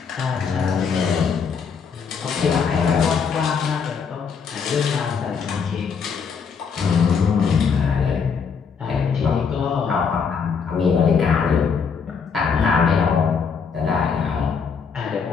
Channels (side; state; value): right; quieter; 6.0 dB